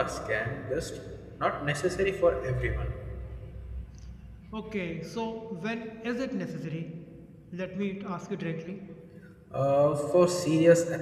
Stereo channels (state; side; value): identical; both; correlation 1.00